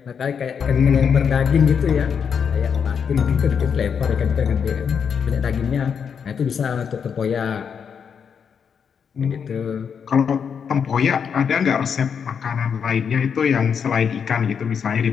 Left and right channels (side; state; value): right; quieter; 6.9 dB